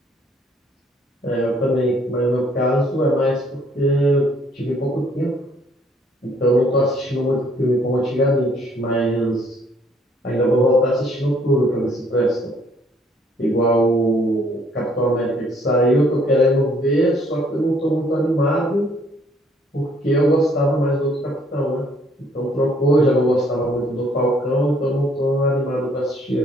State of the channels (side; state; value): both; normal; correlation 0.64